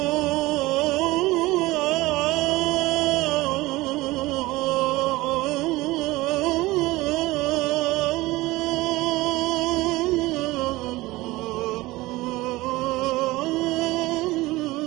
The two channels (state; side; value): quieter; left; 19.8 dB